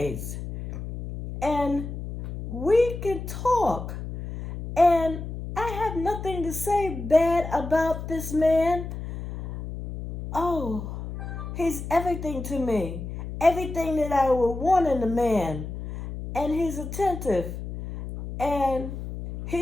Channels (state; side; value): noise; left; hum, 7 dB below the sound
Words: And we can talk. And I have nothing to say bad about this man. Oh, he's everything to me. Everything that I would want in a man. And he's attentive. And